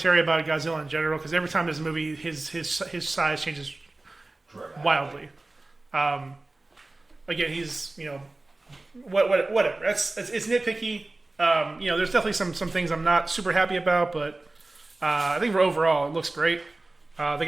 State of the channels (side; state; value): left; quieter; 3.0 dB